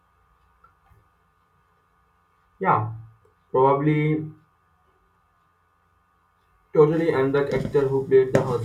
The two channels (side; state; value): both; identical; correlation 1.00